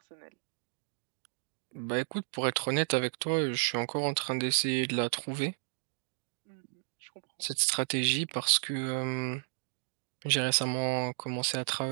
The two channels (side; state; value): left; silent; 56 dB below the other